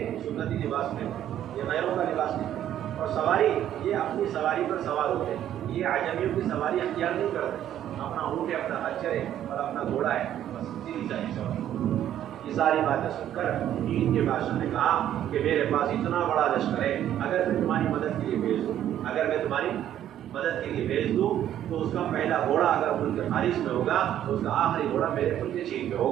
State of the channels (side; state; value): left; quieter; 11.2 dB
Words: سنتی لباس نہیں، یہ غیروں کا لباس نہیں، اور سواری یہ اپنی سواری پر سوار ہوتے ہیں، یہ عجمیوں کی سواری اختیار نہیں کرتے، اپنا اونٹ ہے، اپنا خچر ہے اور اپنا گھوڑا ہے، بس سیدھی سادھی سواری۔ یہ ساری باتیں سن کر چین کے بادشاہ نے کہا کہ میرے پاس اتنا بڑا لشکر ہے، اگر میں تمہاری مدد کے لیے بھیج دوں، اگر میں تمہاری مدد کے لیے بھیج دوں تو اس کا پہلا گھوڑا اگر ملک خارج میں ہوگا تو اس کا آخری گھوڑا میرے ملک چین میں